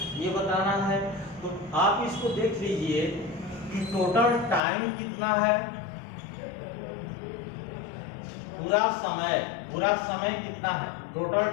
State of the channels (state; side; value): drops out; right; at 4.6 s